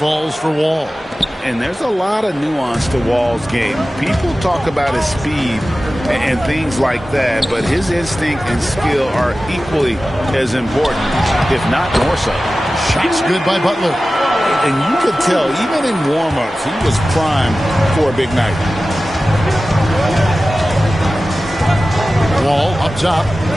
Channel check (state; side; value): normal; both; correlation 0.95